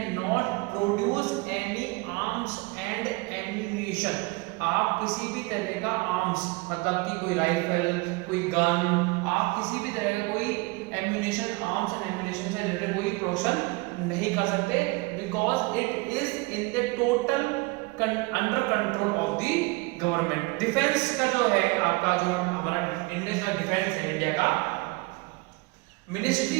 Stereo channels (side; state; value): left; quieter; 25.6 dB